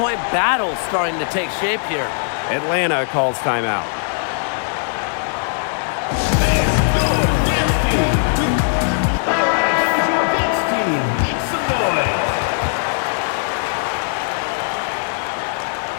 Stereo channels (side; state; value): right; silent; 63 dB below the other